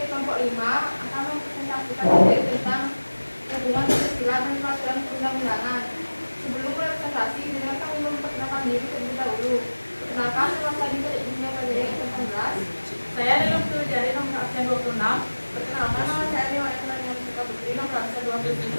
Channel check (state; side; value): inverted; both; correlation -1.00